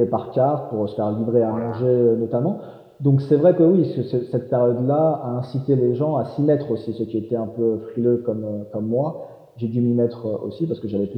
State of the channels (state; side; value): identical; both; correlation 1.00